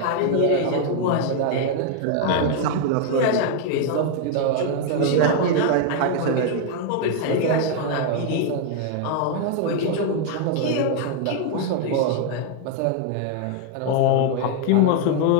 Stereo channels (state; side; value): different; both; correlation 0.00